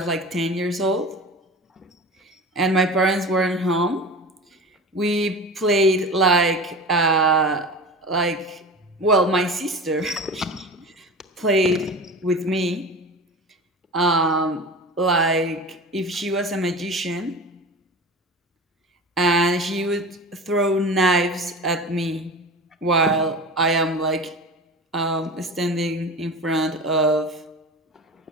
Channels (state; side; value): normal; both; correlation 0.33